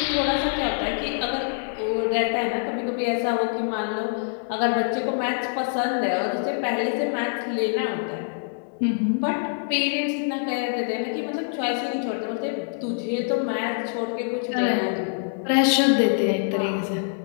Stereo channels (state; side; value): silent; right; digital silence